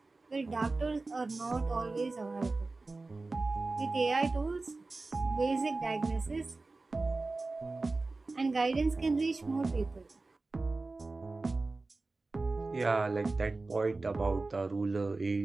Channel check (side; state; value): left; quieter; 3.5 dB